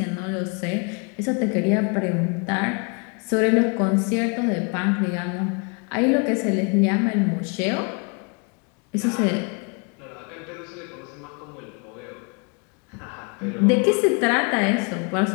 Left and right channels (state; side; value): quieter; right; 33.7 dB